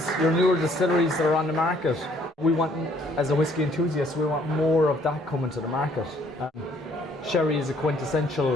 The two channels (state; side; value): normal; both; correlation 0.63